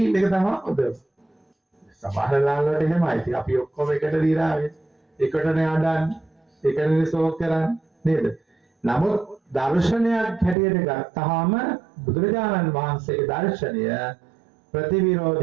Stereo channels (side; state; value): left; drops out; at 10.6 s